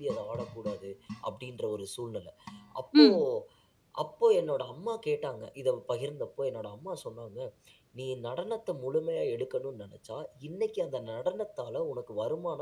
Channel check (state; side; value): identical; both; correlation 1.00